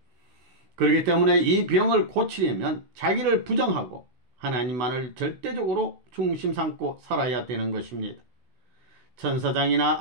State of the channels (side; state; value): left; late; 16 ms